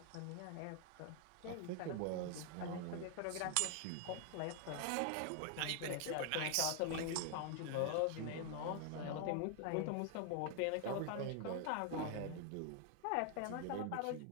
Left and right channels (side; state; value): both; different; correlation 0.00